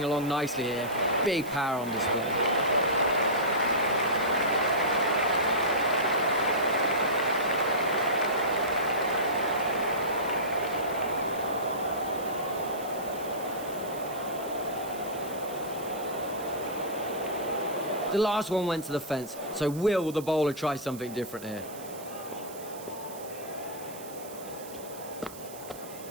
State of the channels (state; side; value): noise; right; hiss, 16 dB below the sound